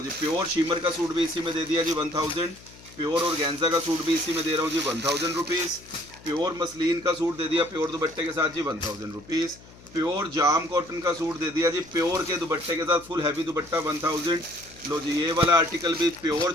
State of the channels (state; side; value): noise; left; hum, 22 dB below the sound